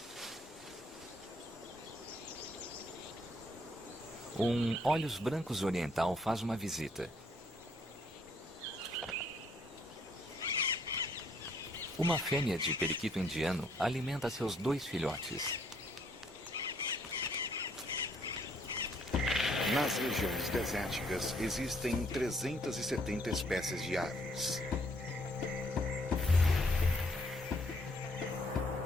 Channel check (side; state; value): both; normal; correlation 0.67